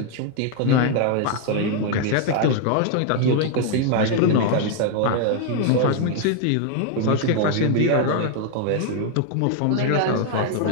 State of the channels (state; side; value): different; both; correlation 0.00